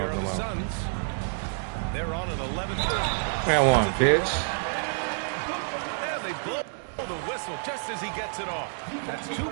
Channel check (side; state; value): left; silent; digital silence